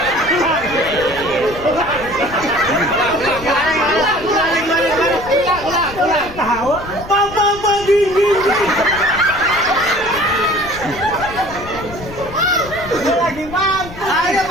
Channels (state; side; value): noise; left; rumble, 14 dB below the sound